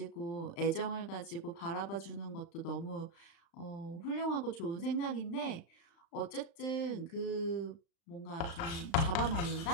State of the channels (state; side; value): late; right; 36 ms